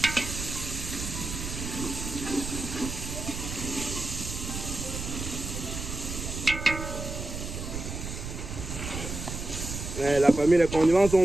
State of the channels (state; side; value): noise; right; rumble, 6 dB below the sound